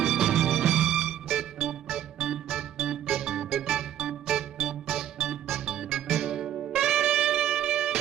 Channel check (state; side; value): quieter; left; 11.2 dB